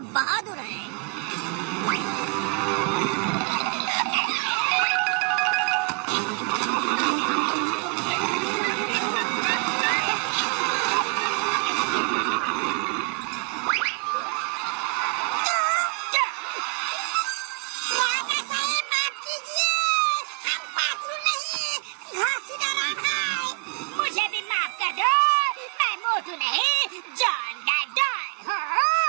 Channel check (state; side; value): quieter; left; 34.0 dB